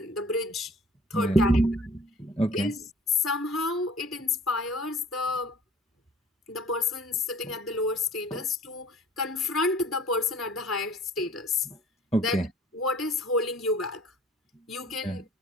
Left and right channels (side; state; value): both; normal; correlation 0.50